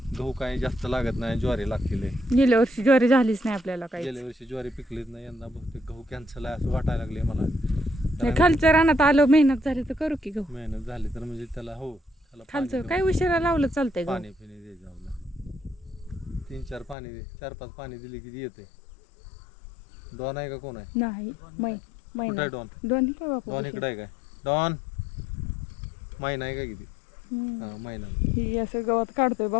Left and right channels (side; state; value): right; drops out; at 16.9 s